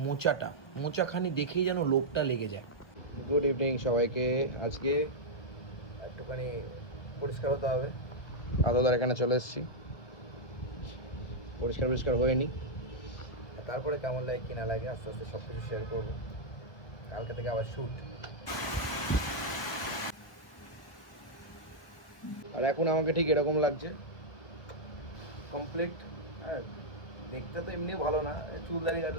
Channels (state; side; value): late; right; 1.2 ms